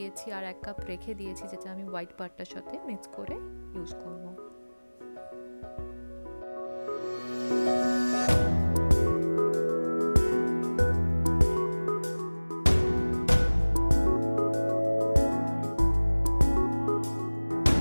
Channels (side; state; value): both; inverted; correlation -1.00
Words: আর 1 কাপ রেখে দিয়েছি, যেটা আমি হোয়াইট পার্টটার সাথে মিক্স করে ইউজ করব।